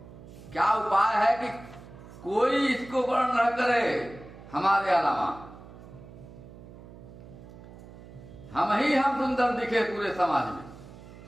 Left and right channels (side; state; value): right; noise; hum, 17 dB below the sound